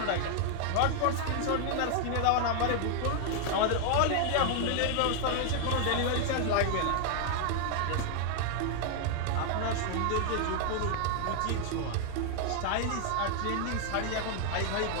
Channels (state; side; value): different; both; correlation 0.00